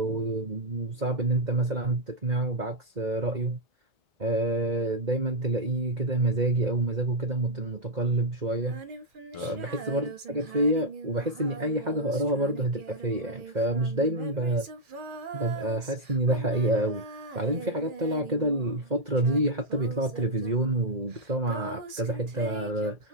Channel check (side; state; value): left; late; 2.4 ms